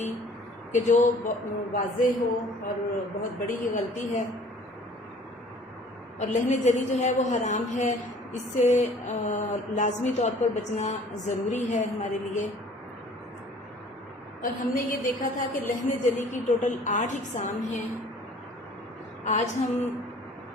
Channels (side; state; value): both; normal; correlation 0.52